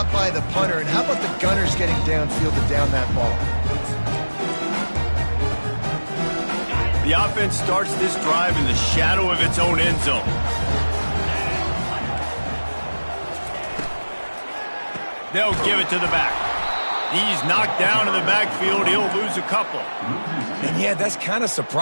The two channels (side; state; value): both; inverted; correlation -1.00